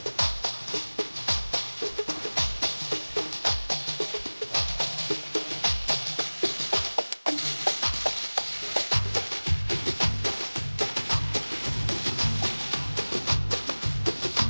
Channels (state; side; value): inverted; both; correlation -1.00